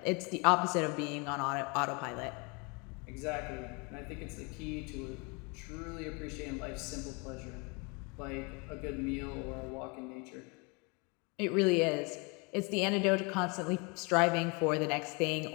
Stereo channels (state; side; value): quieter; right; 30.6 dB